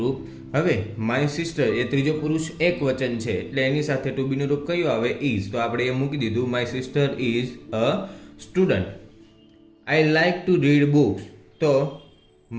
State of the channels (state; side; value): identical; both; correlation 1.00